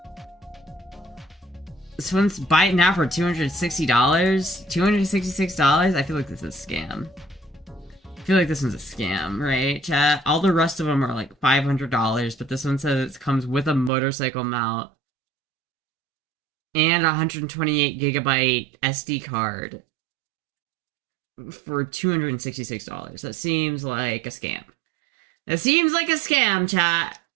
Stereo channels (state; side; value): drops out; left; at 13.9 s